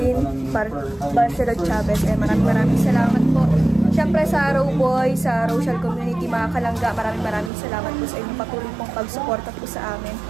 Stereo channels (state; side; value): drops out; left; at 7.5 s